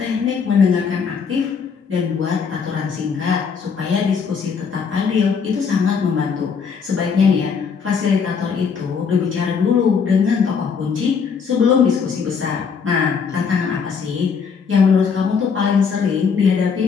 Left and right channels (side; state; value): right; quieter; 6.0 dB